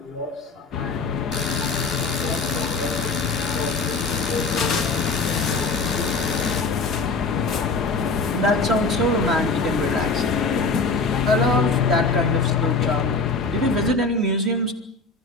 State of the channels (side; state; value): right; quieter; 3.9 dB